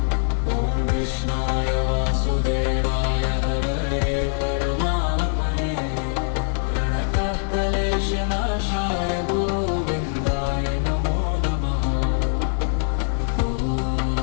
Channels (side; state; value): right; silent; 64 dB below the other